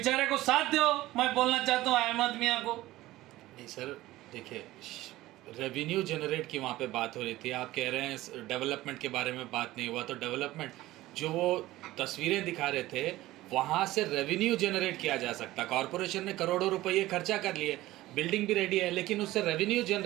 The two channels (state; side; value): quieter; left; 16.9 dB